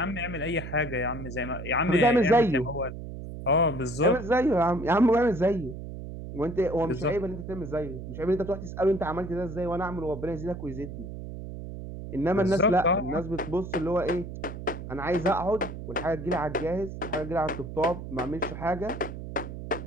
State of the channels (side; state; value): right; noise; hum, 9 dB below the sound